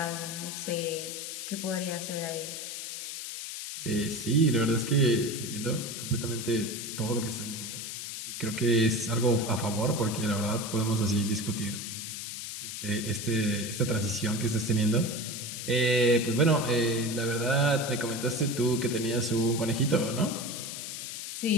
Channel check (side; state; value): left; noise; hiss, 7 dB below the sound